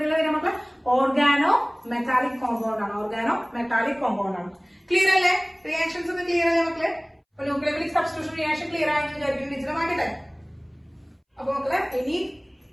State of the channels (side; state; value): both; identical; correlation 1.00